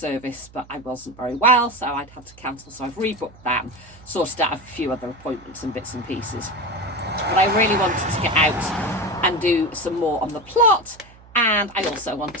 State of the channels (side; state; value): right; noise; hum, 24 dB below the sound